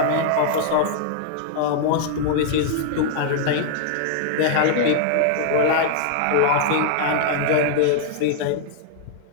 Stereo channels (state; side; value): different; both; correlation -0.01